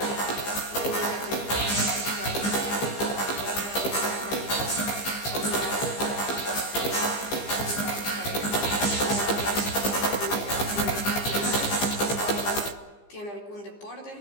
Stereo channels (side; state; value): right; late; 15 ms